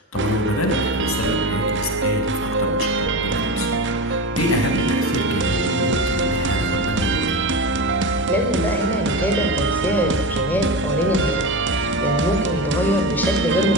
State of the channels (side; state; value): both; normal; correlation 0.24